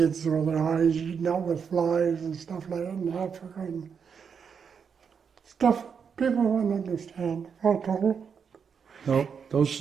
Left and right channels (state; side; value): quieter; left; 6.6 dB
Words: with their eyes eaten out with flies and stuff like that in Africa and stuff people wouldn't understand. No,